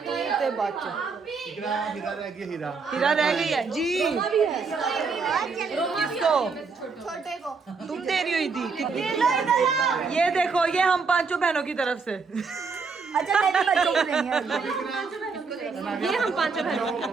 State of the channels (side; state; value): left; quieter; 4.8 dB